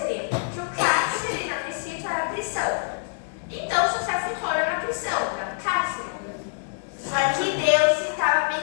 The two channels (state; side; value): silent; right; 59 dB below the other